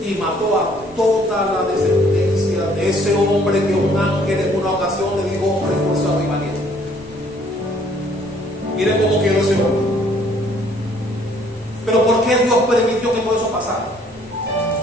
Y mató a toda la descendencia de ese hombre que un ángel en una ocasión le dijo: hombre esforzado y valiente. Miren cómo quedó ese hombre. Pero ¿por qué Dios permitió que todo eso pasara?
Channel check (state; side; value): normal; both; correlation 0.61